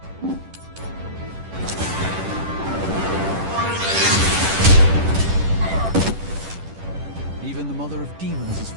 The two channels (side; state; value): left; late; 10 ms